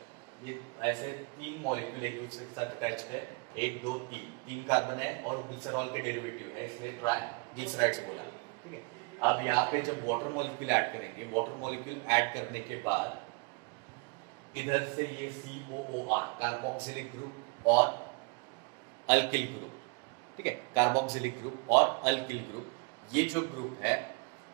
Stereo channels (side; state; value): left; quieter; 31.9 dB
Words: ये ऐसे 3 मॉलिक्यूल एक दूसरे के साथ अटैच है, 1 2 3 कार्बन है और ग्लिसरॉल के डेरिवेटिव है, इसलिए ट्राइग्लिसराइड्स बोला। ठीक है, अब यहाँ पे जब वाटर मॉलिक्यूल ऐड करेंगे, वाटर मॉलिक्यूल ऐड करने के बाद इधर से ये COOR, कार्बोक्सिलिक ग्रुप और अल्किल ग्रुप, ठीक है, कार्बोक्सिलिक ग्रुप और अल्किल ग्रुप, ये जो ग्रुप है